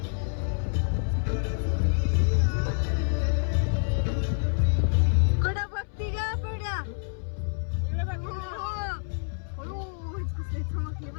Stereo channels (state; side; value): silent; right; 60 dB below the other